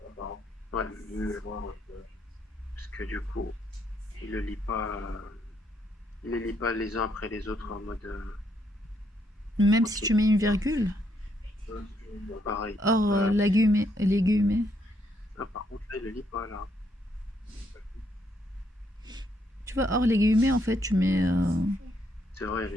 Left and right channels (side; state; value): both; normal; correlation 0.74